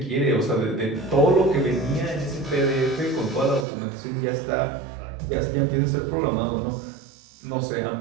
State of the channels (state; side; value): drops out; left; at 3.7 s